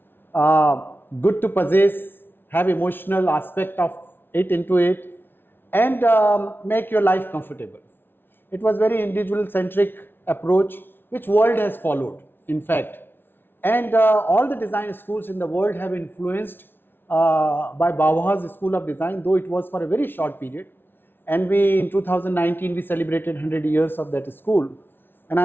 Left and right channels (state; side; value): late; right; 0.10 ms